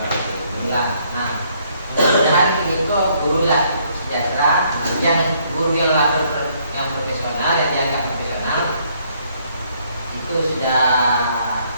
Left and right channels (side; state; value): both; inverted; correlation -0.68